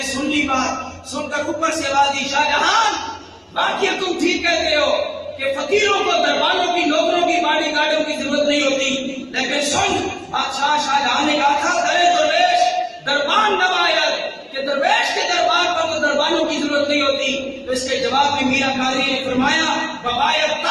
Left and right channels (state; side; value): identical; both; correlation 1.00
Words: سن لی بات، سن کر اوپر سے آواز دی، شاہ جہان باقی تم ٹھیک کہتے ہو کہ فقیروں کو دربانوں کی، نوکروں کی، باڈی گارڈوں کی ضرورت نہیں ہوتی، لیکن سن بادشاہ شاہ جہاں نے کہا تھا درے درویش دربان نمایت، کہ درویش کے دربار پر تو دربانوں کی ضرورت نہیں ہوتی۔ تو اس کے جواب میں میاں قادری نے فرمایا ببایت